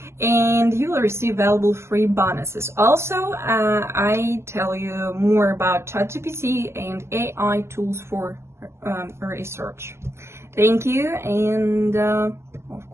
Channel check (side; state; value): left; late; 0.13 ms